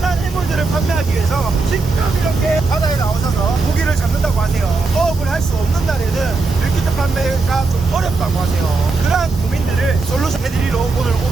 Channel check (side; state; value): left; quieter; 3.9 dB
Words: 해물들을 판매하기 위해서 직접 이렇게 바다에 나오셔서 고기를 잡는다고 하세요. 어업을 할 수 없는 날에는 밀키트 판매가 좀 어렵다고 하세요. 그러한 고민들을 솔루션 해드리러 오늘